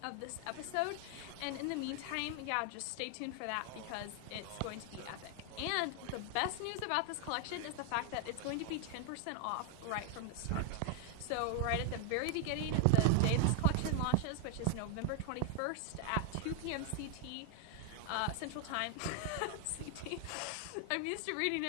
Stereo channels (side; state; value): both; different; correlation 0.00